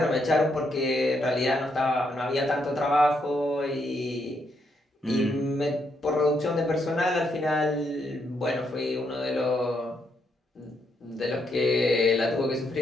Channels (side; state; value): both; normal; correlation 0.77